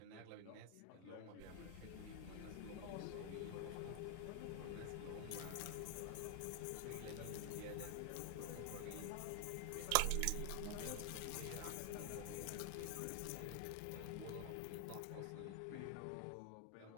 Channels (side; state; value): both; different; correlation 0.00